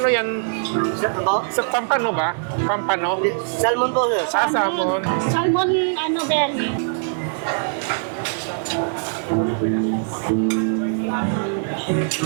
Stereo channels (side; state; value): left; silent; 64 dB below the other